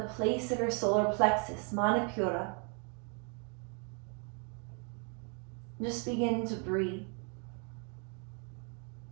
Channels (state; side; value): quieter; left; 37.4 dB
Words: place of your solar plexus, Manipura. Just begin to breathe.